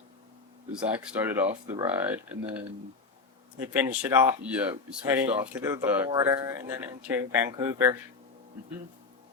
Zach started off the ride, and then we finished it off. Yeah, we switched heading off to the border and then into Vancouver.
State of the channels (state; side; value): quieter; right; 4.3 dB